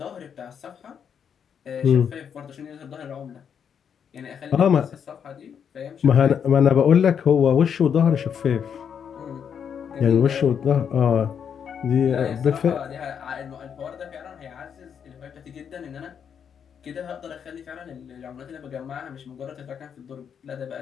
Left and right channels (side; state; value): right; quieter; 7.7 dB